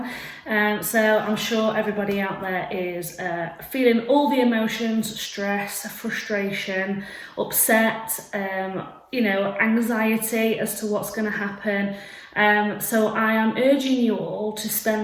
So I'm sure everybody out there is feeling all the emotions, stress, frustration, upset, anxiety as to what's going to happen. So I am urging you all to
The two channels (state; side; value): identical; both; correlation 1.00